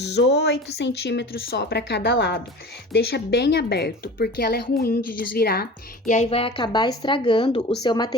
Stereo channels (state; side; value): normal; both; correlation 0.37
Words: 8 centímetros só para cada lado. Deixa bem aberto, porque ela é ruim de desvirar e aí vai acabar estragando o seu